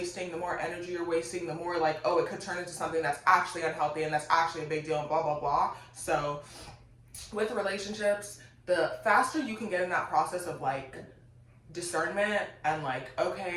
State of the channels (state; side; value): identical; both; correlation 1.00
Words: the more energy you're wasting, the more like, oh, it could turn into something that's actually unhealthy and that's actually a big deal and blah, blah, blah. So with relationships, the faster you can get in that process of like discernment and like,